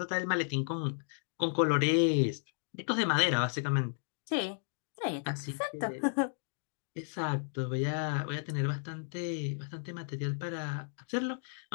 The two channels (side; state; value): right; silent; digital silence